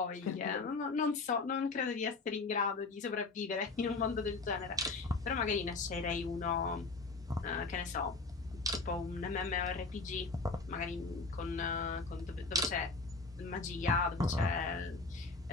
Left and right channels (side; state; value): right; quieter; 3.9 dB